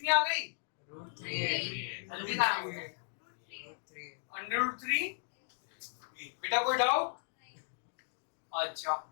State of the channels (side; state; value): right; silent; digital silence